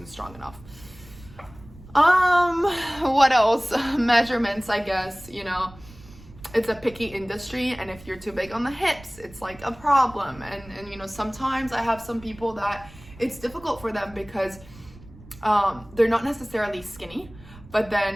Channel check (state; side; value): noise; right; rumble, 20 dB below the sound